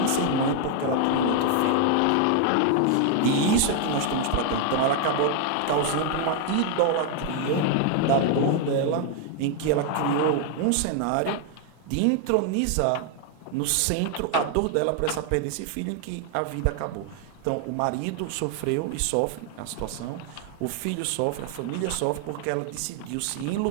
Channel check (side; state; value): both; different; correlation 0.00